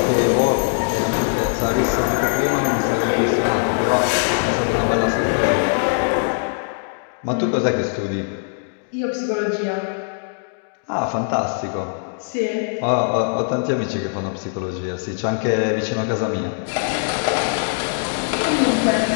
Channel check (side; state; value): right; silent; 65 dB below the other